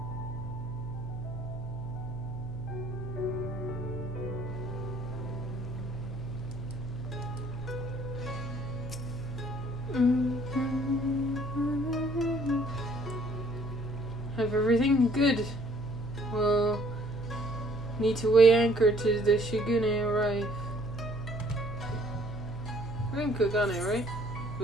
Have everything good. Well, need to weigh anchor to the Shigune arrive. We're in Kagane, right?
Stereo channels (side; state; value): left; noise; hum, 12 dB below the sound